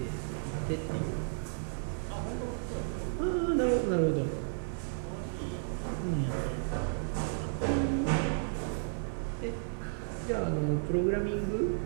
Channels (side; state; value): left; silent; digital silence